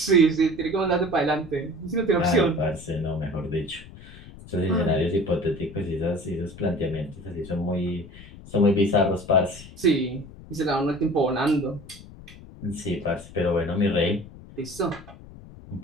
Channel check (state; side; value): noise; left; rumble, 18 dB below the sound